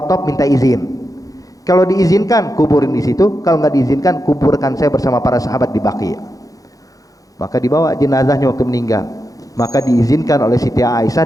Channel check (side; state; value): right; late; 0.17 ms